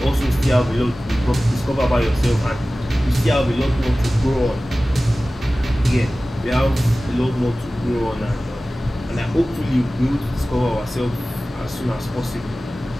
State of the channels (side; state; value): both; normal; correlation 0.97